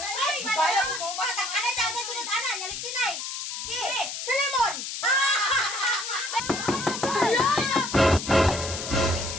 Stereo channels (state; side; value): noise; left; hiss, 6 dB below the sound